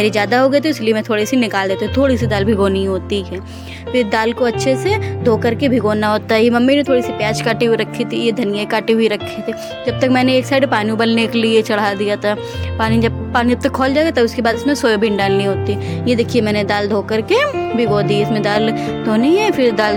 ज़्यादा हो गई तो इसलिए मैं थोड़ी सी निकाल देती हूँ, थोड़ी सी दाल भिगोनी होती है। फिर दाल को अच्छे से धो करके भिगोना होता है। मम्मी ने थोड़ी सी प्याज काटी हुई रखी थी, ये धनिया काटी हुई रखे थे। जब तक मैंने एक साइड पानी उबलने के लिए चढ़ा दिया था। पानी जब तक खौल जाएगा तब उसके बाद इसमें सोयाबीन डालनी होती है। ये देखिए मैंने दाल धो करके भिगो दी। इसमें दाल धोनी है, फिर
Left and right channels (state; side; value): identical; both; correlation 1.00